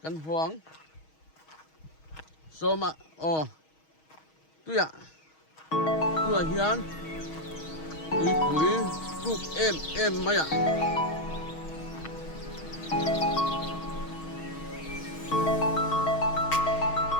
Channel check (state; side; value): late; right; 6.3 ms